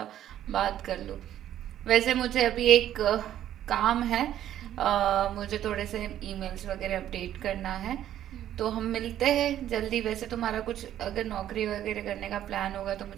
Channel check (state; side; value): quieter; left; 11.6 dB